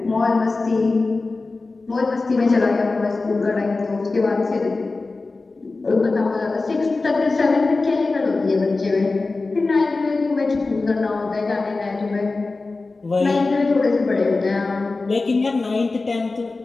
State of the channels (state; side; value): quieter; right; 3.6 dB